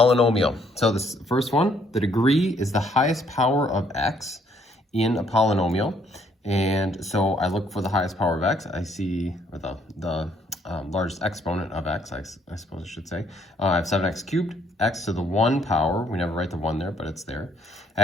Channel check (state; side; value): normal; both; correlation 0.67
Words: So this first one, the degree is the highest power of x in a polynomial. And so I look for the highest power of x. I see or the largest exponent of x, I suppose I should say. I have 7x cubed, x to the 1 power. We never write the 1 there, but it's there. I